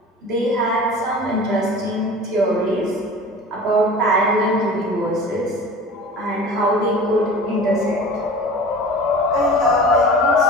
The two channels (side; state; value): both; normal; correlation 0.38